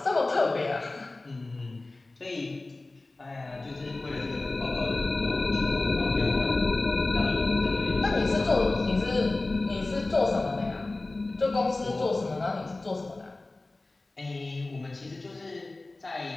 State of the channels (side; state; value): right; quieter; 3.1 dB